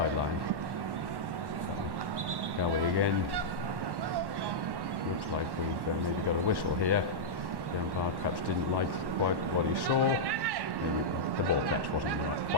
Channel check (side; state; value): left; late; 1.1 ms